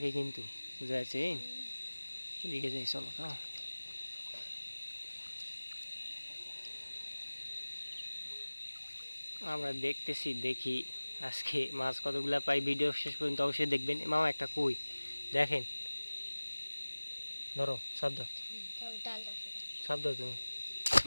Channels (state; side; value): inverted; both; correlation -1.00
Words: কিন্তু, বুঝা যাচ্ছে। এদিকে যাই চলো তো। আমরা দেখতেছি, দেখি আজকে মাছ কতগুলা পাই। ভিডিও শেষ পর্যন্ত অবশ্যই দেখবেন। মামা একটা কই দেখেন, ধরো শব্দ শব্দ তুমি।